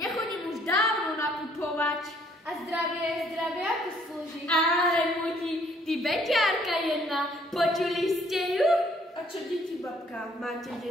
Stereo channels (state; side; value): normal; both; correlation 0.63